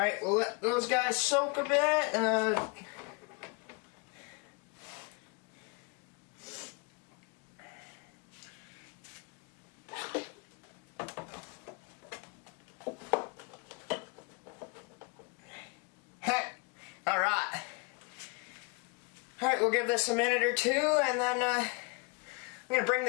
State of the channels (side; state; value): right; quieter; 31.8 dB